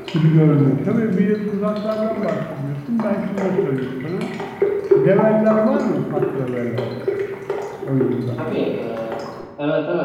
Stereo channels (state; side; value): identical; both; correlation 1.00